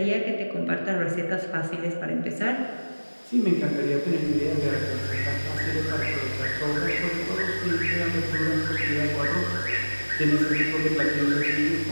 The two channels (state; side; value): inverted; both; correlation -1.00